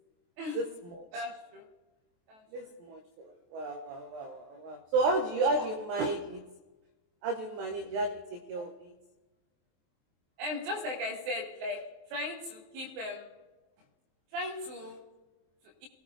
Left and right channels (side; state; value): left; late; 23 ms